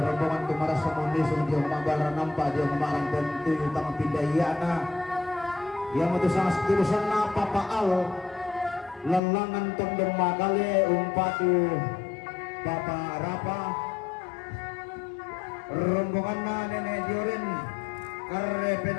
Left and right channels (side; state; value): right; drops out; at 9.2 s